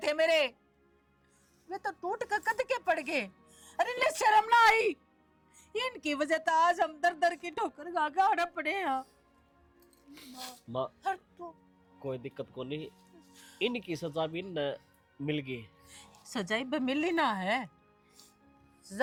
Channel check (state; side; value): identical; both; correlation 1.00